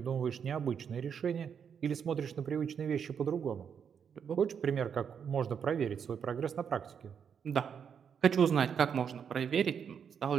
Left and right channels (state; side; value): quieter; left; 7.4 dB